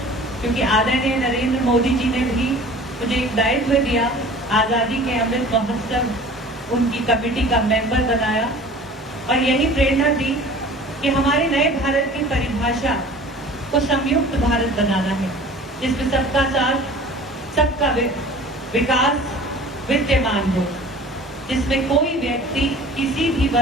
क्योंकि आदरणीय नरेंद्र मोदी जी ने भी मुझे एक दायित्व दिया, आज़ादी के अमृत महोत्सव उनकी कमेटी का मेंबर बनाया और यही प्रेरणा दी कि हमारे नए भारत की परिभाषा को संयुक्त भारत बनाना है, जिसमें सबका साथ, सबका विकास विद्यमान हो, जिसमें कोई व्यक्ति, किसी भी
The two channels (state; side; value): normal; both; correlation 0.44